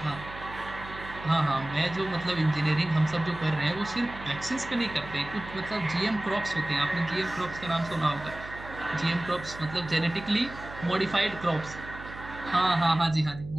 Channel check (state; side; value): noise; right; hum, 14 dB below the sound